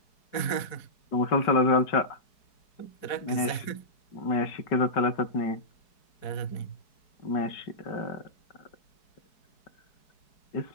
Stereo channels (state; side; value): late; right; 4.7 ms